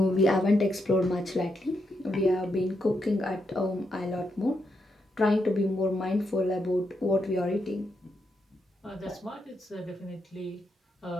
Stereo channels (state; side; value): normal; both; correlation 0.82